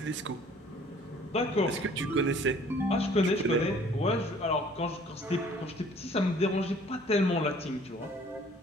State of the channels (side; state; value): both; normal; correlation 0.55